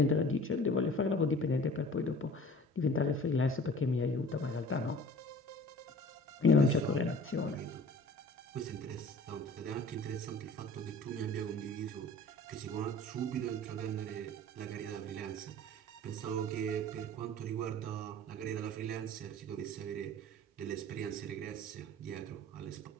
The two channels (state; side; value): normal; both; correlation 0.45